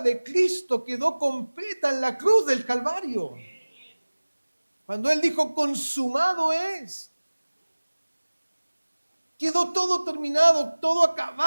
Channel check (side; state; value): both; inverted; correlation -1.00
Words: de Cristo quedó completa en la cruz del Calvario. Cuando Él dijo, consumado es. Quedó todo terminado, todo